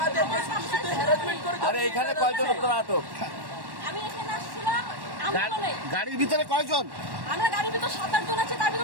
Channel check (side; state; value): left; late; 1.1 ms